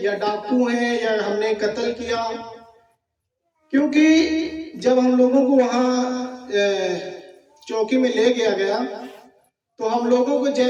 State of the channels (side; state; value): both; identical; correlation 1.00